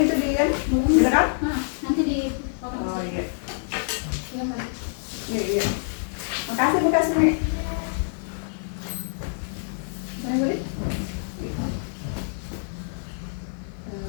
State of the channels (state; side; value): silent; right; 61 dB below the other